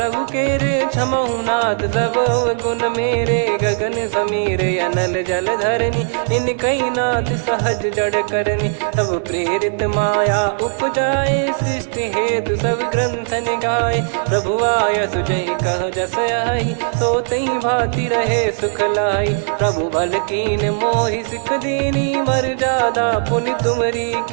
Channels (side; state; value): left; silent; digital silence